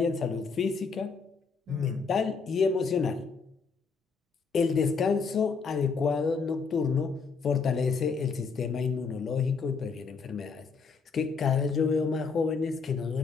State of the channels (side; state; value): right; quieter; 5.1 dB